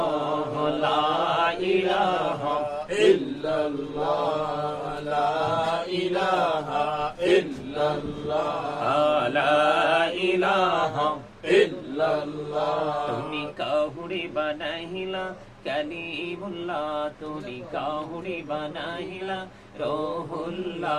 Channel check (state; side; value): identical; both; correlation 1.00